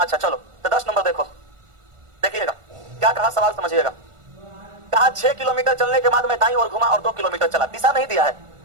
चलो, तो 10 नंबर देखो, देखिएगा क्या कहा, सवाल समझिएगा। कहा 6 किलोमीटर चलने के बाद मैं दाईं ओर घुमा और 2 किलोमीटर चला। दिशा नहीं दिया है,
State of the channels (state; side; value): late; left; 1.4 ms